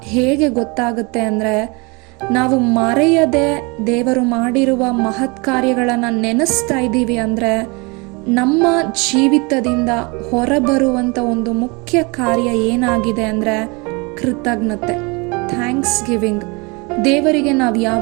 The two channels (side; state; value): left; quieter; 28.5 dB